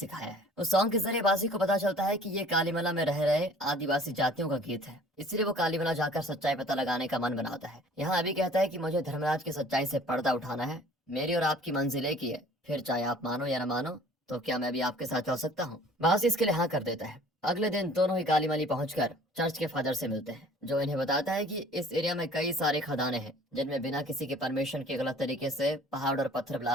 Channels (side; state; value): both; normal; correlation 0.51